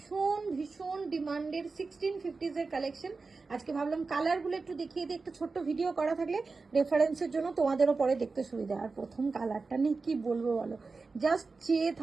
ভীষণ ডিমান্ডের 1650s এর কালেকশন। আজকে ভাবলাম কালারগুলো একটু দেখিয়ে দিই, একটা ছোট্ট ভিডিও করা থাকলে রেফারেন্সের জন্য তোমাদেরও পরে দেখতে সুবিধা। আর প্রথম কালারটা নিয়ে কি বলবো বলো, জাস্ট চেয়ে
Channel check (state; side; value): quieter; left; 4.1 dB